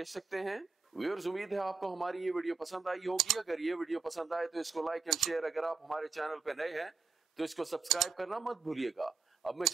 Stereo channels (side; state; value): left; quieter; 4.3 dB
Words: सकते हैं। व्यूअर्स, उम्मीद है आपको हमारी ये वीडियो पसंद आई होगी। अगर ये वीडियो पसंद आए तो इसको लाइक एंड शेयर, अगर आप हमारे चैनल पे नए हैं तो इसको सब्सक्राइब करना मत भूलिएगा। अब मैं